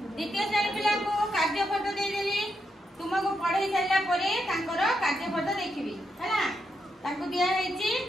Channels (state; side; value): normal; both; correlation 0.83